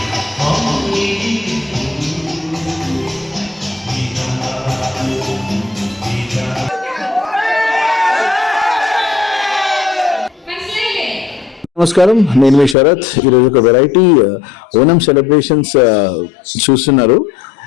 నమస్కారం, నేను మీ శరత్. ఈరోజు ఒక వెరైటీ ఓనం సెలబ్రేషన్స్ చూస్తున్నారు.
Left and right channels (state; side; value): drops out; right; at 12.8 s